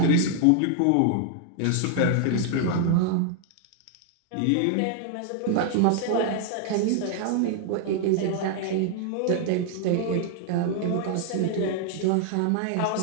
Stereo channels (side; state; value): both; different; correlation 0.00